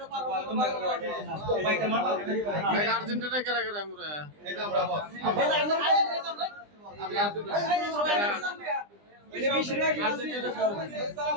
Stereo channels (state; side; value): late; left; 20 ms